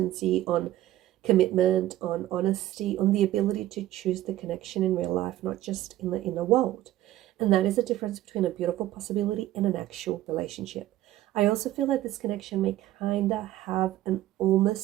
on commitment, on honesty, on the ability to choose the connection in real life, not just in the inner world. And that is a difference between a beautiful possibility and an actual relationship. I also feel like this connection may kind of have an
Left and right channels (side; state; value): left; quieter; 14.4 dB